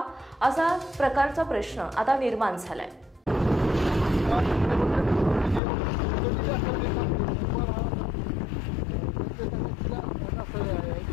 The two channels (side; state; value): right; drops out; at 5.6 s